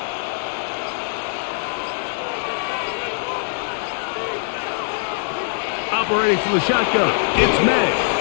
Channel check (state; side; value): silent; right; 64 dB below the other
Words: Operating from the shotgun, it's May.